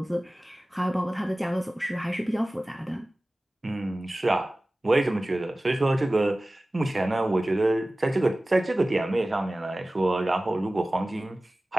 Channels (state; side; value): normal; both; correlation 0.97